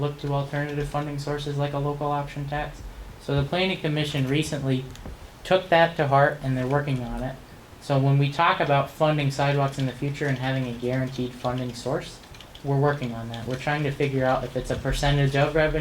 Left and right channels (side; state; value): both; identical; correlation 1.00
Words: look to alternative funding sources like a local option tax. So the Planning Commission recently took that to heart, and they're working on it. So when we talk about funding sidewalks in the future and having a guaranteed funding source, we're working on that. We're trying to figure out if it's a percentage of